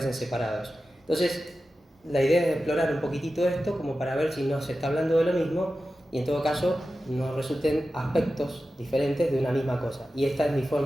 separados. Entonces, la idea es explorar un poquitito esto como para ver si no se está hablando de lo mismo y en todo caso nos resulten aspectos diferentes de una misma cosa. Y esta es mi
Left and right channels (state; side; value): normal; both; correlation 0.93